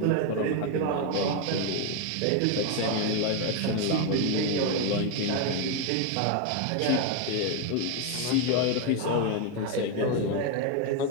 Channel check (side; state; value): both; different; correlation 0.02